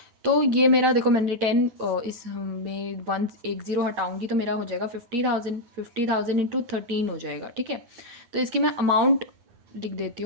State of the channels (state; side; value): late; left; 9.0 ms